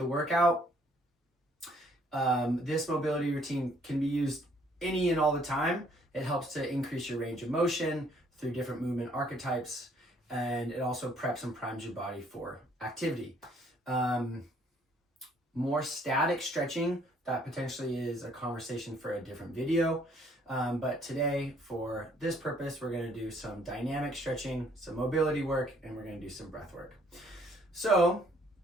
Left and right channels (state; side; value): normal; both; correlation 0.63